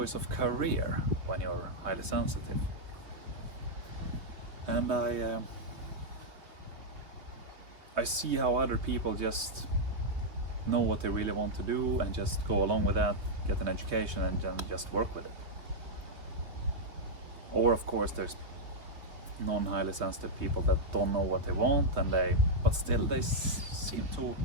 of career when you're highly sensitive. And I see how other people just know what they really want to do and just go along with that, get an education and then just work with it. Or of course there's non-highly sensitive people that don't know what they want but still they seem to,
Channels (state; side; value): late; left; 3.3 ms